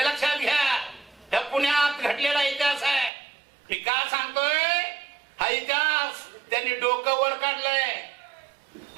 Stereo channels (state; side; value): drops out; left; at 3.1 s